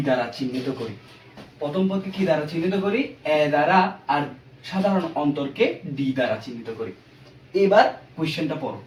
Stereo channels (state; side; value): identical; both; correlation 1.00